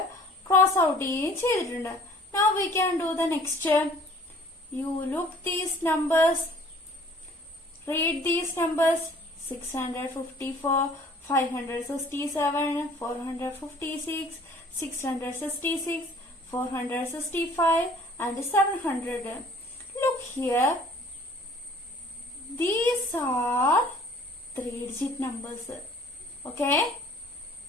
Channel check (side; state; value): both; normal; correlation 0.52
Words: cross out ചെയ്യുകയും ചെയ്തിട്ടുണ്ട്. Now we can do the next. You look these numbers. Read these numbers. 654, 567, 456, 666, 465 and 700. Look here. These are 3-digit numbers. Okay.